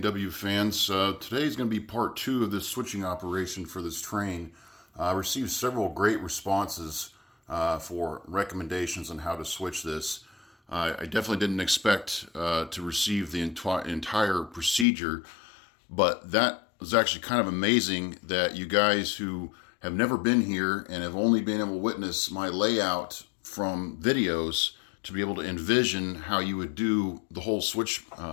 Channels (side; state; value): right; drops out; at 14.9 s